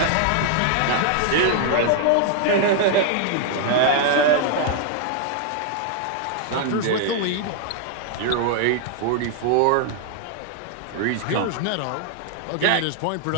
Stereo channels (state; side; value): different; both; correlation 0.00